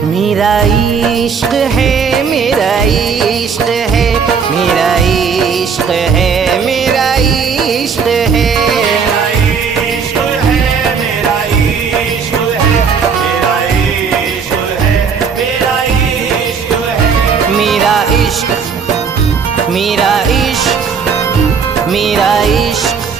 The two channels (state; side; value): quieter; left; 6.1 dB